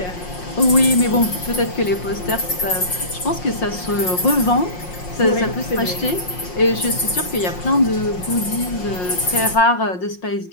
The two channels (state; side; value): late; right; 5.6 ms